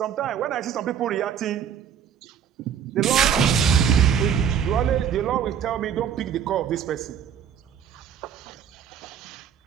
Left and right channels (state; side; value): quieter; left; 8.2 dB